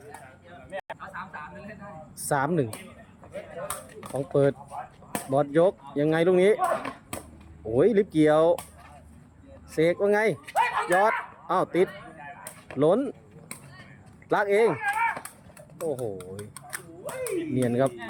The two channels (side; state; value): both; identical; correlation 1.00